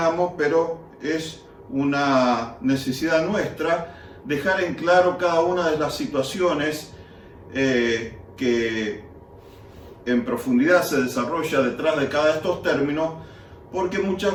pero es una necesidad nuestra dejar en claro cada una de las situaciones que en profundidad se desarrolla detrás de cada de estos términos, porque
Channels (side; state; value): both; identical; correlation 1.00